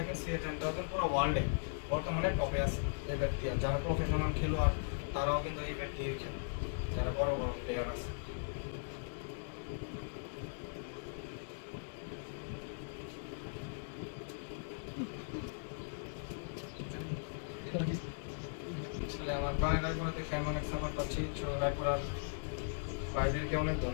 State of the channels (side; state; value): right; silent; 52 dB below the other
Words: CA10000 পুরো ওয়ার্ল্ডে বর্তমানে টপে আছে এই ব্যাট দিয়ে। যারা প্রফেশনাল খেলোয়াড় তারাও কিন্তু এই ব্যাট দিয়ে খেলে, যারা বড় বড় প্লেয়ার আছে। আমার প্রায় রায়পুরাতে ফ্যান অনেক সাপোর্ট পাচ্ছি। রায়পুরার ভাইদেরকে অনেক